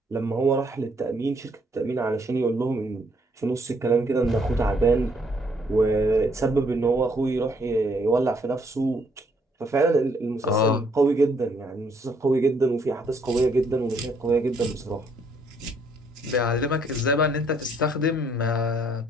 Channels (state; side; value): normal; both; correlation 0.68